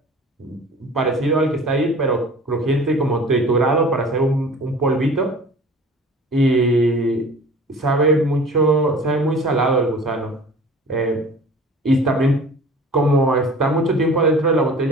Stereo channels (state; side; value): normal; both; correlation 0.44